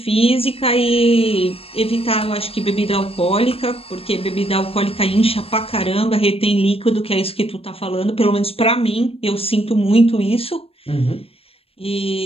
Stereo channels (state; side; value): late; right; 0.28 ms